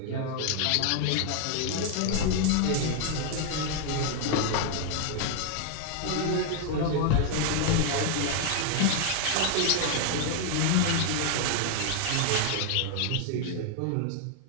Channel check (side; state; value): both; different; correlation 0.00